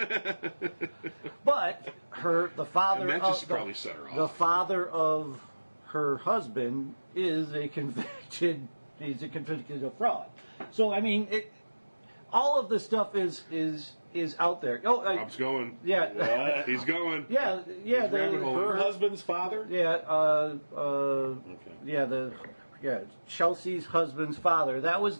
But the father And that of just probably set her off. the father of her husband is a convicted. He's a convicted fraud. So I mean, all of this stuff is out there. Oh, Rob's going. yeah, He's going. yeah. He's rabbit hole. Her husband's father? Yeah, Okay. Chelsea's husband's father. That was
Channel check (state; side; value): inverted; both; correlation -1.00